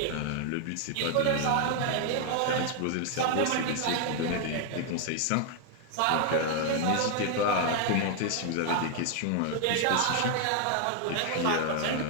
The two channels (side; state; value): both; different; correlation 0.00